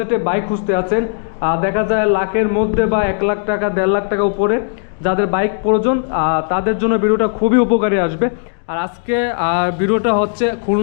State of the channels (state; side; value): silent; right; digital silence